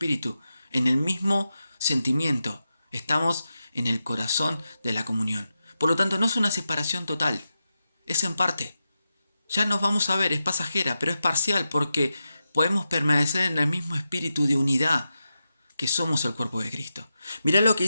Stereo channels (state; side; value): inverted; both; correlation -0.89